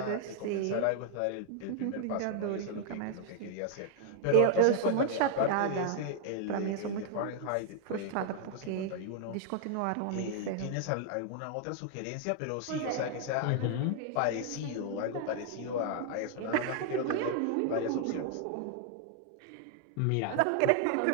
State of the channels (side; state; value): both; different; correlation 0.00